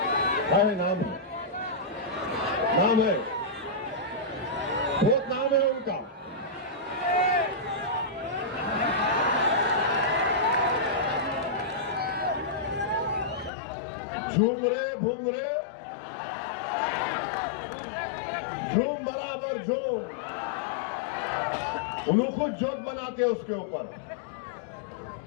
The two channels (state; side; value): drops out; right; at 13.5 s